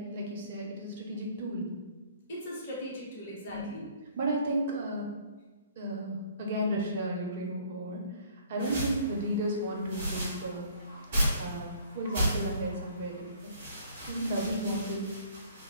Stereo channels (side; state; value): both; inverted; correlation -0.57